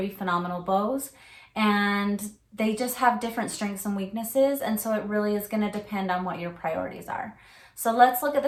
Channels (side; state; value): both; identical; correlation 1.00